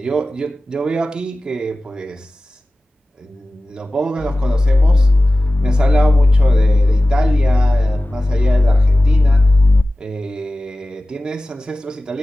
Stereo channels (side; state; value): both; normal; correlation 0.96